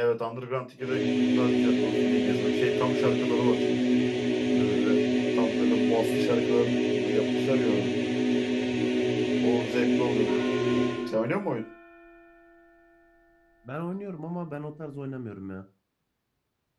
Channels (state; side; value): identical; both; correlation 1.00